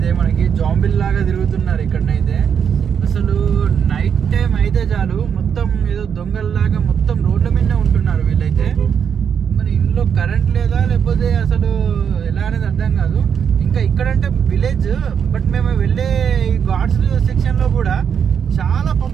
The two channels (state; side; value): quieter; left; 7.6 dB